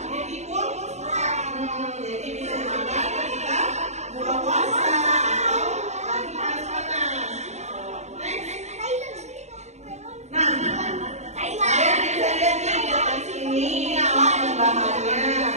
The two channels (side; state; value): left; late; 0.33 ms